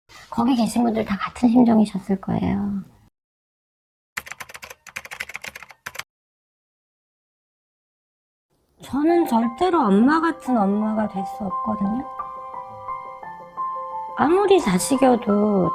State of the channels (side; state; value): both; identical; correlation 1.00